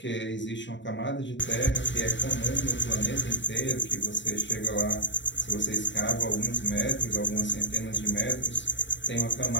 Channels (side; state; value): right; late; 0.53 ms